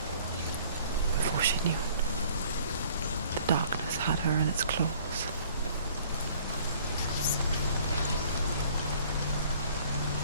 Before she knew it, the darkness had her in its claws.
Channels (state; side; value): inverted; both; correlation -0.54